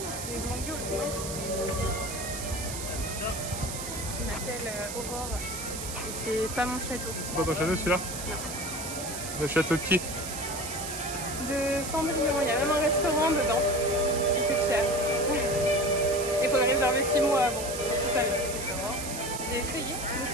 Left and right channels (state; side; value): noise; right; hiss, 7 dB below the sound